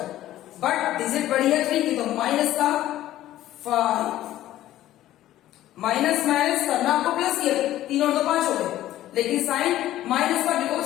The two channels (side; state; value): right; quieter; 13.9 dB